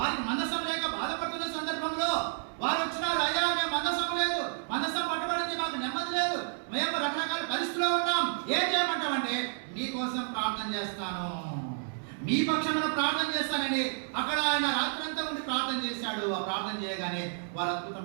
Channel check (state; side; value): silent; left; digital silence